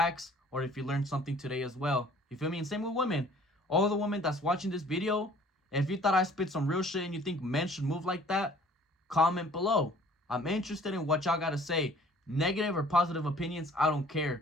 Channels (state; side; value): normal; both; correlation 0.53